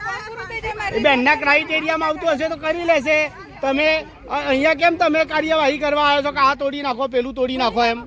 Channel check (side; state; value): both; identical; correlation 1.00